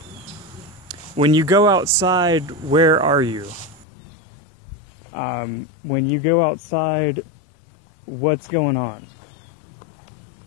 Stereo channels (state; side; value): drops out; right; at 3.9 s